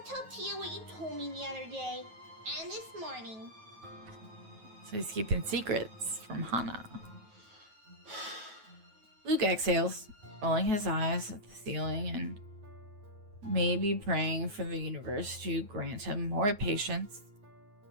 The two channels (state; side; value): late; left; 9.3 ms